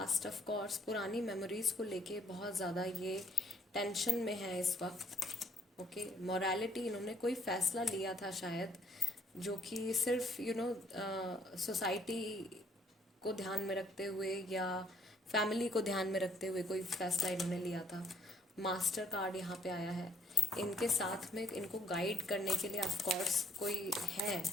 of course पुरानी मेमोरीज को लेके बहुत ज़्यादा ये टेंशन में है इस वक्त। ओके, मोरालिटी, इन्होंने कोई फैसला लिया था शायद जो कि सिर्फ सोसाइटी को ध्यान में रखते हुए या फैमिली को ध्यान में रखते हुए कोई फैसला इन्होंने लिया था। मास्टर कार्ड यहाँ पे आया है। इनके साथ में इनको गाइड करने के लिए ऑफ कोर्स कोई है,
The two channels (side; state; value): both; normal; correlation 0.66